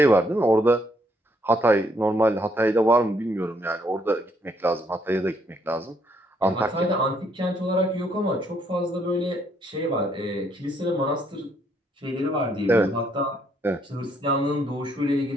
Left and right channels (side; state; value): both; normal; correlation 0.70